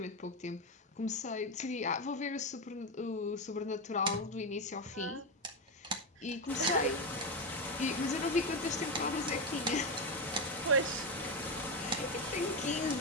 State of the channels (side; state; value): both; normal; correlation 0.12